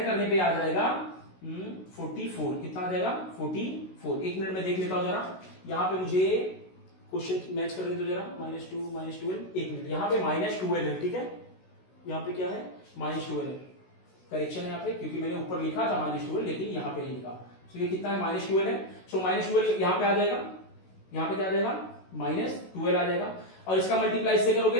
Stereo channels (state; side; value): late; right; 16 ms